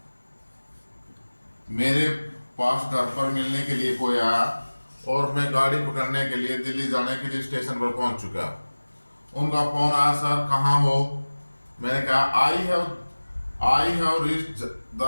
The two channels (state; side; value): inverted; both; correlation -1.00